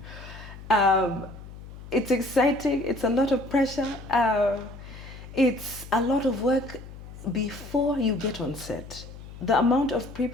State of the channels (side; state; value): left; noise; hum, 15 dB below the sound